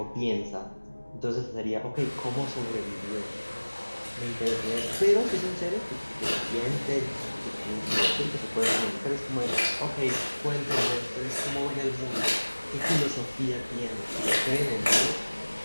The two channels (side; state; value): both; inverted; correlation -1.00